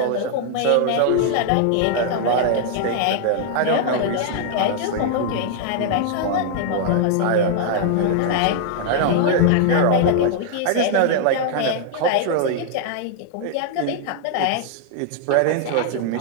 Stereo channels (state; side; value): different; both; correlation -0.01